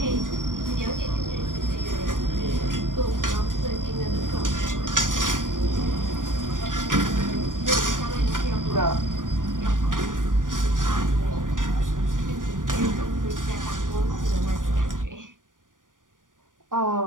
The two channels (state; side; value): late; left; 0.88 ms